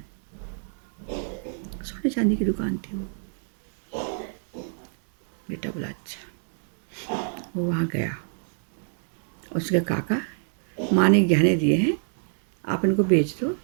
सोने चांदी की दुकान थी वो। बेटा बोला अच्छा। वो वहाँ गया। उसके काका, माँ ने गहने दिए हैं, आप इनको बेच दो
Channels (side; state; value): left; silent; digital silence